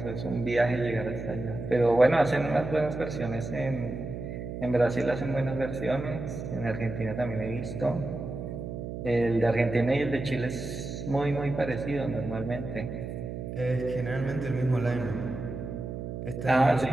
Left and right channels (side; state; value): right; noise; hum, 7 dB below the sound